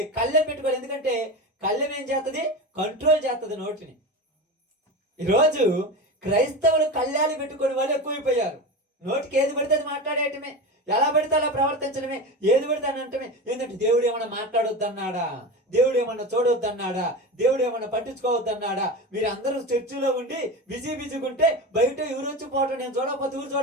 కళ్ళెం పెట్టుకోవాలి. ఎందుకంటే కళ్ళెం ఏం చేస్తుంది? కంట్రోల్ చేస్తుంది నోటిని. ఈరోజు క్రైస్తవులు కళ్యాలు పెట్టుకునే వాళ్ళు ఎక్కువైపోయారు. నోటికి ఏది పడితే అది మాట్లాడేయటమే, ఎలా పడితే అలా ప్రవర్తించడమే, ఏది పడితే అని అంటమే. ఏంటంటే దేవుడు ఏమన్నా మాట్లాడొద్దన్నాడా? దేవుడు ఏమన్నా చూడొద్దన్నాడా? దేవుడు ఏమన్నా పట్టించుకోవద్దన్నాడా? మీరు అందరూ చర్చిలో ఉండి బిజీగా ఉంటే బయట ఎవరు వచ్చి పోవటం, నేను చూడకపోతే ఎవరు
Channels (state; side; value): normal; both; correlation 0.25